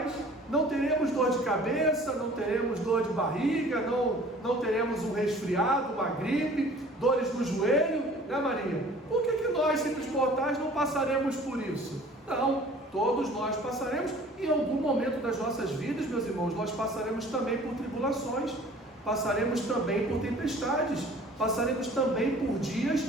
não teremos dor de cabeça, não teremos dor de barriga, não teremos um resfriado, uma gripe, dores no joelho, né, Maria? Por que nós, simples mortais, não passaremos por isso? Não, todos nós passaremos. Em algum momento das nossas vidas, meus irmãos, nós passaremos também por tribulações, passaremos também por tempestades, passaremos também por dias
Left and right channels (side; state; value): both; normal; correlation 0.49